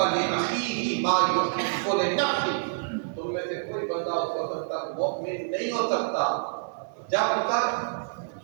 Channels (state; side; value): quieter; left; 37.0 dB